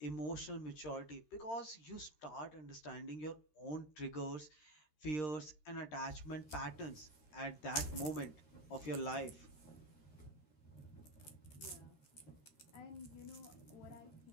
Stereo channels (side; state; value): right; late; 13 ms